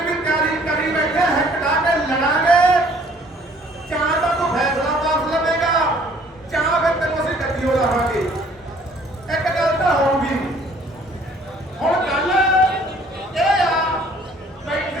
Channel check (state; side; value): normal; both; correlation 0.57